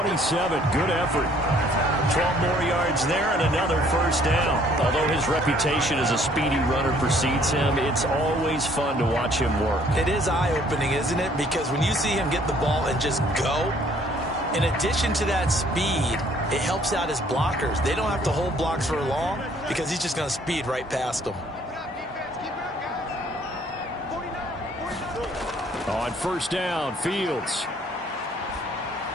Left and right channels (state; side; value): normal; both; correlation 0.60